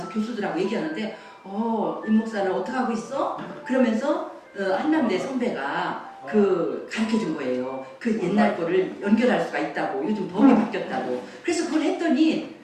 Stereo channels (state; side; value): identical; both; correlation 1.00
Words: 교수들하고 얘기하는데 이 목사는 어떻게 하고 있어? 그러면서 한남대 선배가 그 가르쳐 준 거예요. 그 옛날 거를 연결할 수가 있다고. 요즘 법이 바뀌었다고. 그래서 그걸 했더니